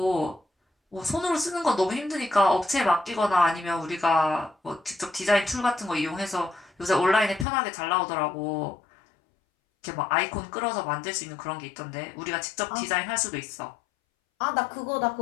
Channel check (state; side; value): drops out; right; at 7.5 s